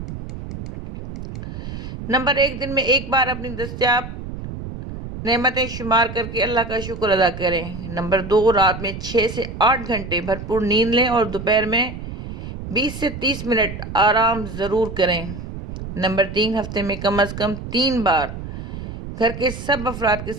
نمبر 1، دن میں ایک بار اپنی دستیاب نعمتیں شمار کر کے اللہ کا شکر ادا کریں۔ نمبر 2، رات میں 6 سے 8 گھنٹے بھرپور نیند لیں اور دوپہر میں 20 سے 30 منٹ آرام ضرور کریں۔ نمبر 3، ہفتے میں کم از کم 3 بار گھر کے سب افراد کے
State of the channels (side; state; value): right; noise; rumble, 9 dB below the sound